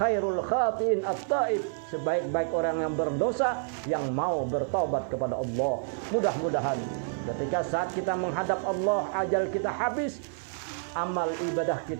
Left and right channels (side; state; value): left; silent; 59 dB below the other